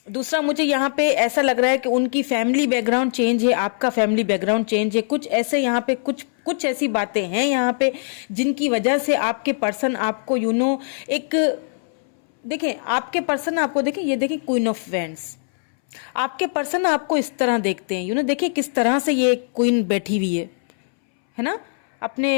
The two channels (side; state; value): right; silent; 65 dB below the other